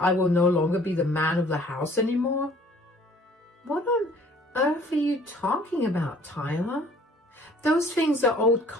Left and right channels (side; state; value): both; normal; correlation 0.54